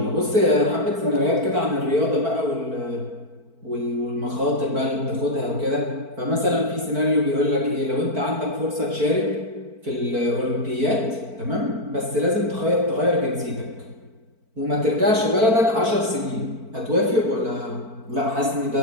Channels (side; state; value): left; late; 4.5 ms